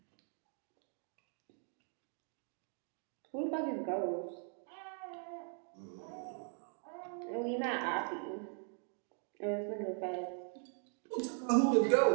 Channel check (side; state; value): left; silent; 51 dB below the other